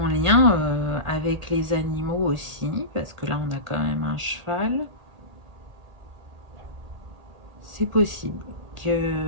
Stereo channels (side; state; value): left; late; 1.5 ms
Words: lien avec les animaux aussi, parce que là, on a quand même un cheval. C'est possible